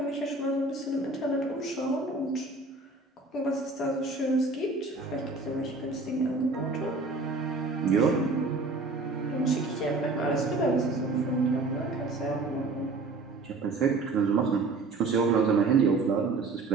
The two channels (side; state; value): left; quieter; 3.5 dB